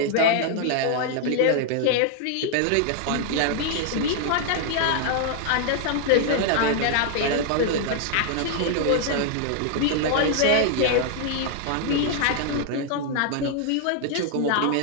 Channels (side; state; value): both; different; correlation 0.00